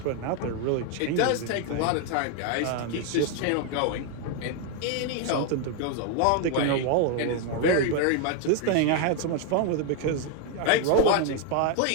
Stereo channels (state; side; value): different; both; correlation 0.01